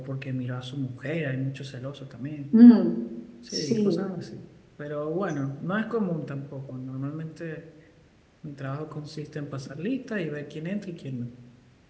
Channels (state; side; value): identical; both; correlation 1.00